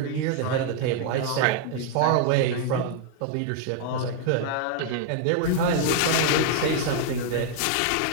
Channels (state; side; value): different; both; correlation 0.00